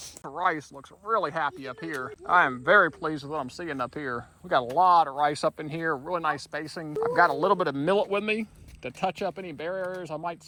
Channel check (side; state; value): both; identical; correlation 1.00